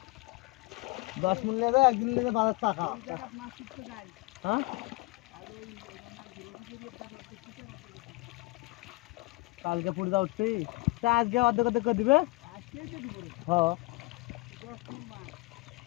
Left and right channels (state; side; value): quieter; right; 23.6 dB